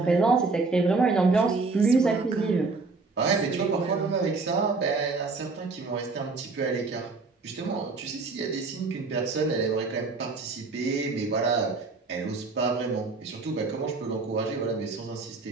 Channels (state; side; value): quieter; left; 4.0 dB